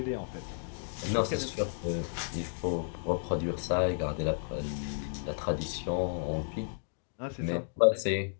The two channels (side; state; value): right; silent; digital silence